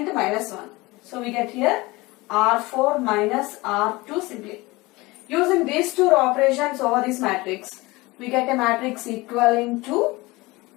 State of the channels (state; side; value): quieter; right; 21.9 dB